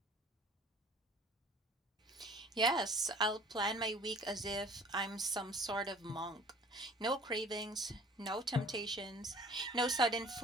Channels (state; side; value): normal; both; correlation 0.49